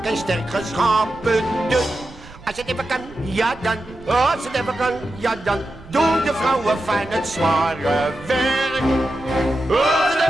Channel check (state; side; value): noise; right; rumble, 20 dB below the sound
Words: en sterk geschapen. Dus als het even kan, ja dan. Als het even kan, ja dan. Doen de vrouwen fijn het zware werk. Als het